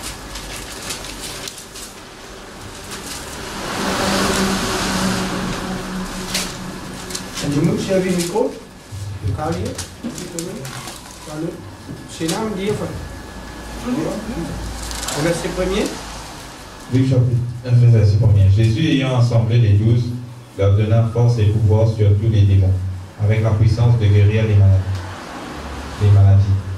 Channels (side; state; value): both; identical; correlation 1.00